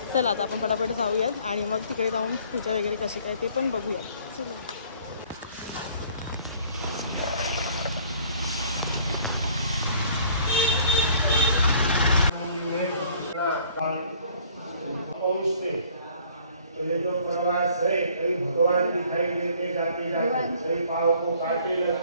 चला आता आपण पटापट जाऊयात आणि मग तिकडे जाऊन पूजा वगैरे कशी काय ते पण बघूयात. चलो. तो ये जो प्रवास है, कई भगवान दिखाई देते जाते जाते, कई पाँव को काटे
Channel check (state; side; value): inverted; both; correlation -0.57